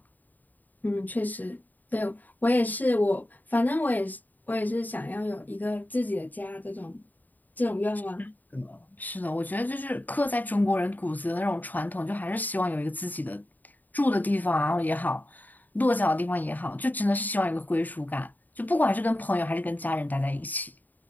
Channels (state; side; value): late; right; 0.084 ms